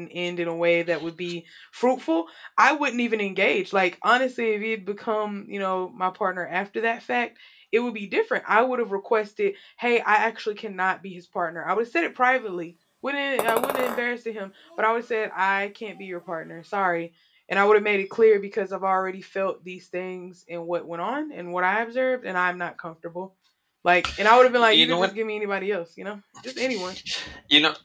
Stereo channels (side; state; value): both; identical; correlation 1.00